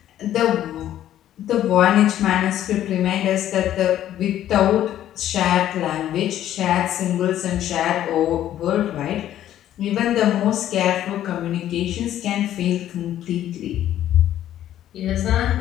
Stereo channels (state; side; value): quieter; right; 12.0 dB